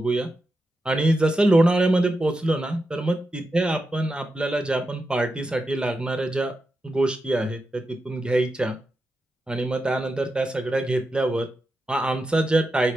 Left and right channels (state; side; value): normal; both; correlation 0.88